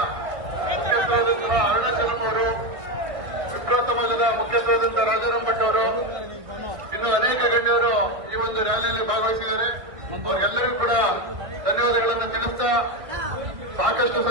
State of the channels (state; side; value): late; left; 1.6 ms